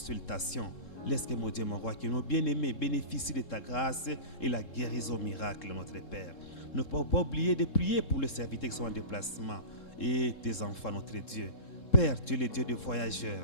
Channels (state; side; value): late; right; 3.7 ms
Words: Laisse que, mon Dieu, mon roi, que nos bien-aimés bénéficient de ta grâce et la guérison miracle, notre Père. Ne pas oublier de prier pour les serviteurs qui sont en déplacement et tes enfants, notre Dieu. Père, tu es le Dieu des